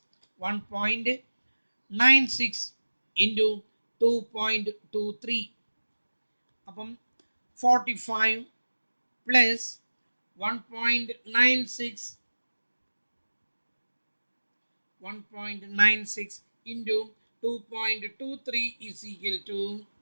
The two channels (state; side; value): inverted; both; correlation -1.00